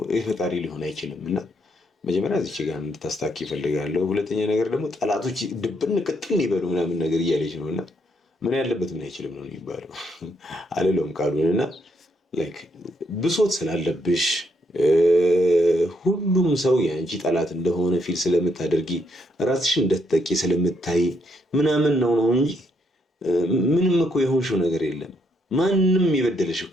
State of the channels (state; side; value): normal; both; correlation 0.74